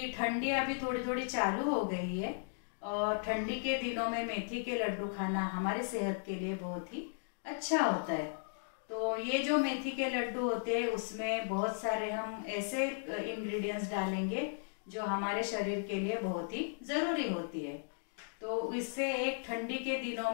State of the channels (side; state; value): right; silent; digital silence